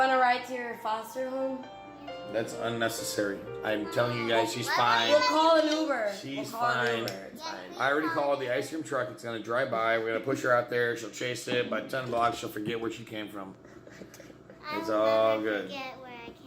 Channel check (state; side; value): identical; both; correlation 1.00